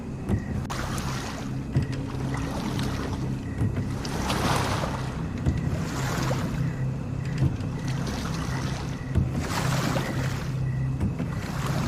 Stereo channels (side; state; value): both; identical; correlation 1.00